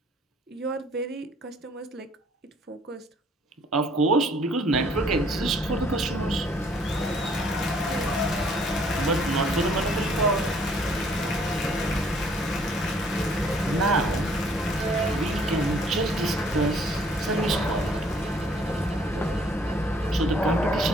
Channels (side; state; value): both; normal; correlation 0.61